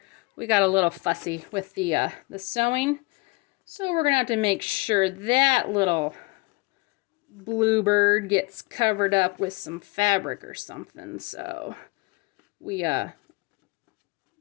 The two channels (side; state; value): right; quieter; 25.8 dB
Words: we got a little fussy with the sewing. So we're going to have to make sure that little bluebird gets covered up with some fabric or something. So we all